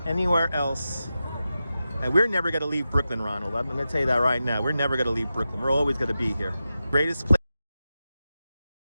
anywhere else. And we're never going to leave Brooklyn, Ronald. I'm going to tell you that right now. We're never going to leave Brooklyn. We're always going to be here. Greatest place.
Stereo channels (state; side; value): inverted; both; correlation -0.92